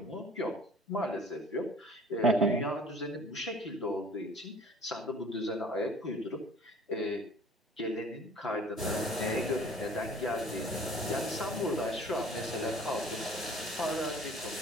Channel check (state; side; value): normal; both; correlation 0.49